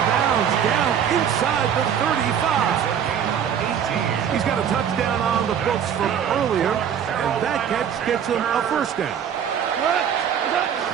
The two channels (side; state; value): left; quieter; 8.5 dB